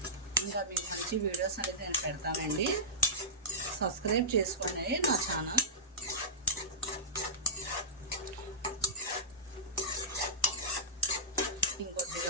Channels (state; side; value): normal; both; correlation -0.17